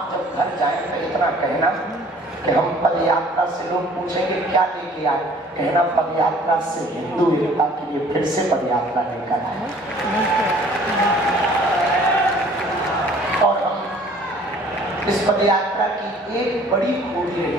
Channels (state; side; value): normal; both; correlation 0.53